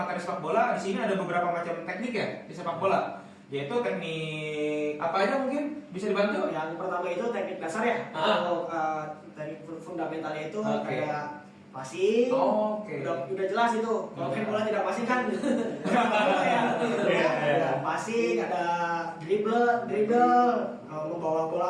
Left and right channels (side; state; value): both; identical; correlation 1.00